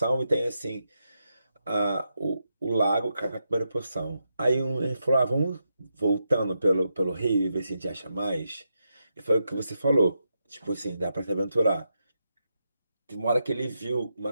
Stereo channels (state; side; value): inverted; both; correlation -0.85